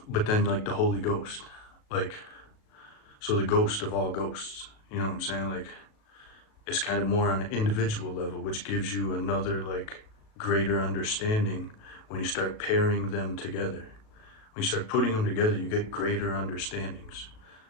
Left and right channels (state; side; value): late; right; 37 ms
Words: but then like the Holy Ghost, like, so the ghost of all ghosts, you know what I'm saying? Like, it's kind of more on an individual level, which gives you another like greater understanding when you start pairing them together. When you start putting them together, you get greater understandings.